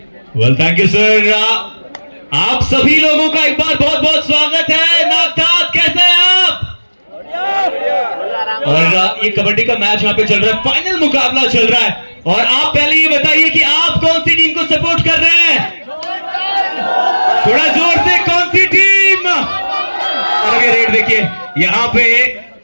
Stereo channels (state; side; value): inverted; both; correlation -1.00